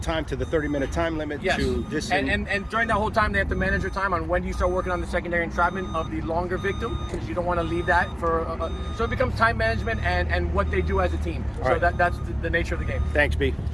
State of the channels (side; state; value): both; identical; correlation 1.00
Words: to the 30-minute time limit to disengage. And during that whole time, they have to manage their time on when do you start working on the secondary entrapment of the longer victim, because you don't want to leave that for. So it becomes time management and what they do as a team. All so right. that's the nature of the game. Thanks, B.